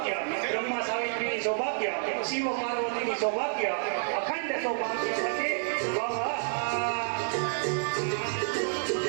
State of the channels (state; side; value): silent; left; 58 dB below the other